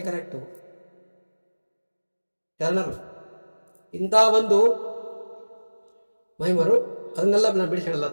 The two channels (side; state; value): both; inverted; correlation -1.00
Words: ಕರೆಕ್ಟು. ಶರಣರು ಇಂಥ ಒಂದು ಮಹಿಮರು, ಅದನ್ನೆಲ್ಲ ನಾನು ಬಿಡಿಸಿ ಹೇಳಲ್ಲ.